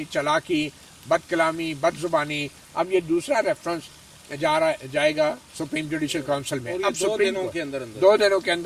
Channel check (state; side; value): identical; both; correlation 1.00